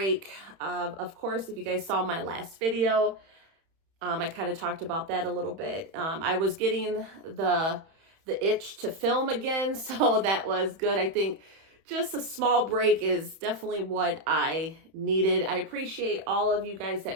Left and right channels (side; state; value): left; late; 31 ms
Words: Of course, if you guys saw my last video, I kind of talked about that a little bit. I was getting the itch to film again, so that was good. I think just a small break is definitely what I needed. I appreciate all of you guys